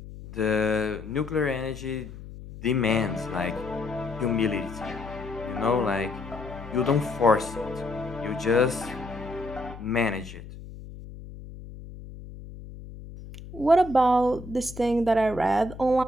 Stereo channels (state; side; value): noise; left; hum, 14 dB below the sound